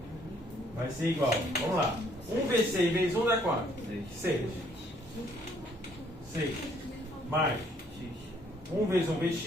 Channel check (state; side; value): normal; both; correlation 0.65